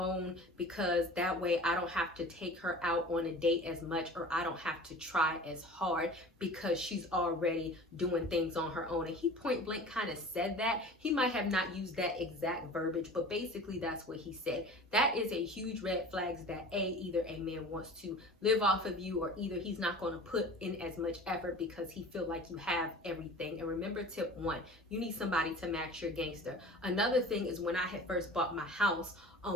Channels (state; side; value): normal; both; correlation 0.40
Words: because that way I don't have to take her out on a date as much, or I don't have to try as hard because she's already doing things on her own. And he point blank kind of said that. He might have not used that exact verbiage, but basically that's what he said. That is a huge red flag, that either a man wants to live off of you, or either he's not going to put in as much effort because he feel like you have everything. And remember, tip 1, you need somebody to match your gangster. Another thing is, when I had first bought my house,